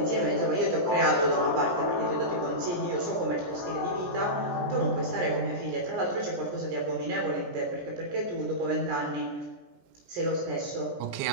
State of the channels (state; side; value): late; left; 17 ms